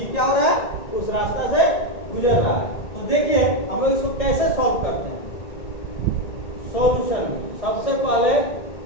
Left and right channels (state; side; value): late; right; 1.8 ms